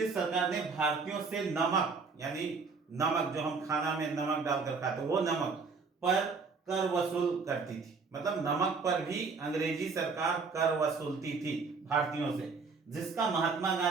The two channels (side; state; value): left; quieter; 4.7 dB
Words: सरकार ने भारतीयों से नमक यानी नमक जो हम खाना में नमक डालकर खाते वो नमक पर कर वसूल करती थी। मतलब नमक पर भी अंग्रेजी सरकार कर वसूलती थी भारतीयों से, जिसका महात्मा